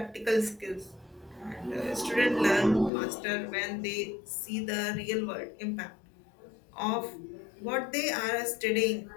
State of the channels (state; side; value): drops out; right; at 2.9 s